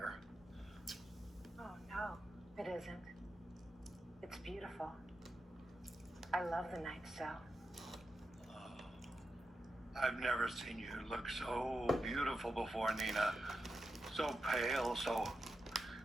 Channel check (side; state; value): both; normal; correlation 0.88